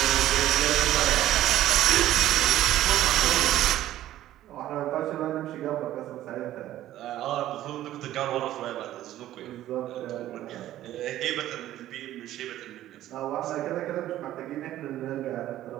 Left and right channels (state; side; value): quieter; left; 13.6 dB